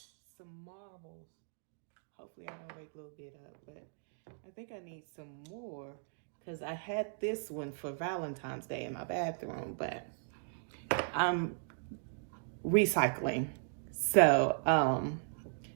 marbles. Hopefully I don't wake a little bit up, but I think I need some more. because I had this one for Valentine's Day in my bathroom, but I'm recycling. So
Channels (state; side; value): silent; left; digital silence